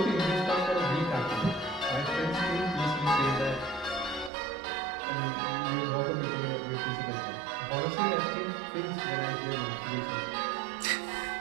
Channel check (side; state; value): left; drops out; at 4.3 s